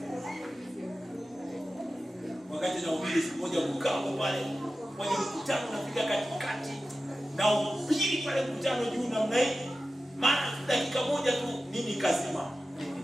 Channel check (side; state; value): both; normal; correlation 0.93